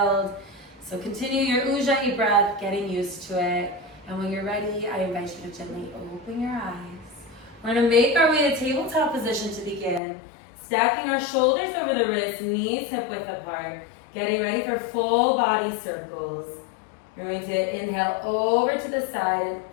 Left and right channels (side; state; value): right; drops out; at 10.0 s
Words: So continue your Ujjayi breath, getting used to it. And when you're ready, I invite you to gently open your eyes. We're going to make our way to tabletop position to begin. Stacking our shoulders over the wrists, knees hip width apart. Getting ready for full body circles. You're going to inhale over to the side and